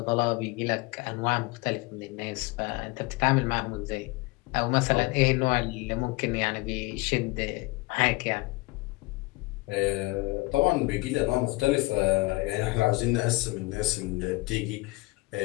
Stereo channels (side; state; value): right; quieter; 23.4 dB